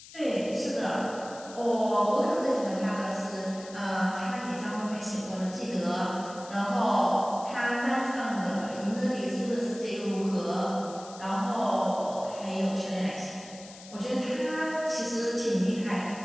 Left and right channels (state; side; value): noise; left; hiss, 17 dB below the sound